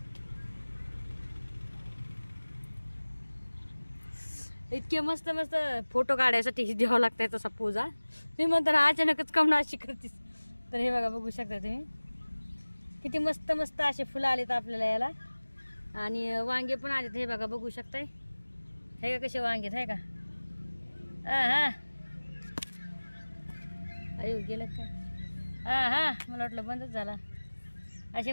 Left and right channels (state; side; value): inverted; both; correlation -1.00